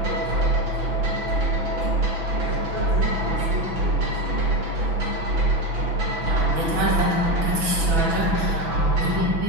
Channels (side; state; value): left; late; 6.0 ms